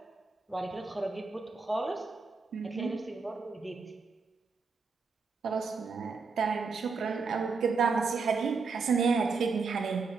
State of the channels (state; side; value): quieter; left; 4.6 dB